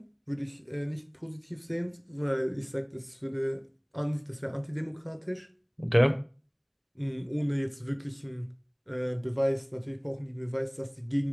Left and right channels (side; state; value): both; identical; correlation 1.00